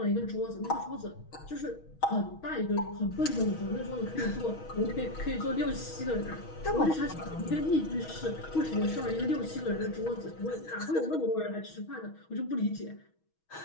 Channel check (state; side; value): late; right; 6.3 ms